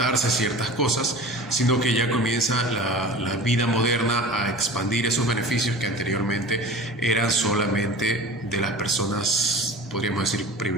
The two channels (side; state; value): both; normal; correlation 0.38